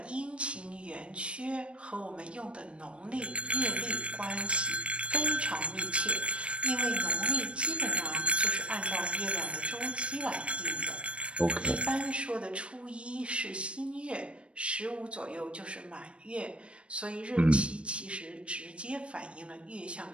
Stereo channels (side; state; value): left; late; 0.060 ms